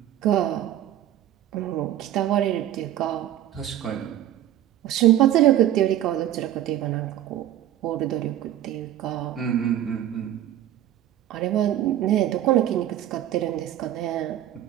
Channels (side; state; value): left; quieter; 12.2 dB